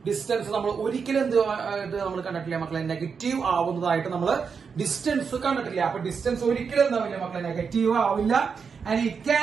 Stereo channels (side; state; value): left; quieter; 5.9 dB